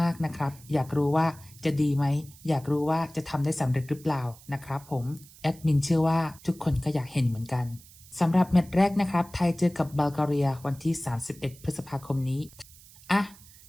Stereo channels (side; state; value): right; noise; hiss, 22 dB below the sound